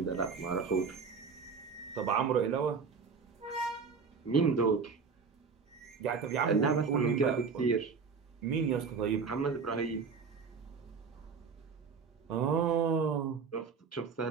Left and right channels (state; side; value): quieter; left; 5.5 dB